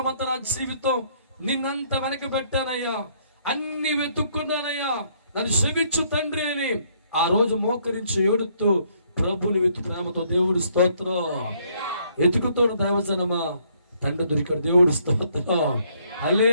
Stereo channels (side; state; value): both; inverted; correlation -0.67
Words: అంతా నా జీవితం నిన్నంత వెనక పెట్టానయ్యా, అన్ని వెతుక్కున్నానయ్యా, నన్ను క్షమించు తండ్రి అని ఆ రోజు మోకరించి ఏడుతూ ప్రభుని వెతు ప్రేమతో దేవుడు స్తోత్రం. ఎతుకుతోడు దైవజనమా, తండ్రి దొరికాడు, దేవుడు స్తోత్రం.